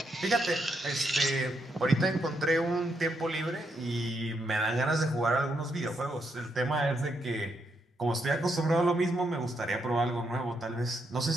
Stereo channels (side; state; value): both; normal; correlation 0.79